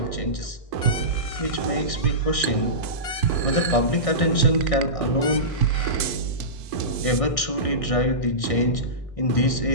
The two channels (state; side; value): late; right; 1.6 ms